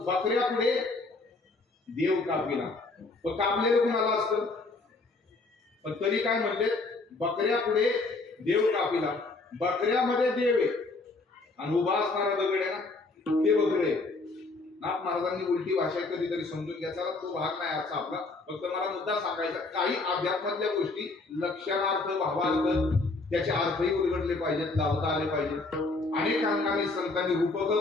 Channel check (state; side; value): quieter; right; 3.4 dB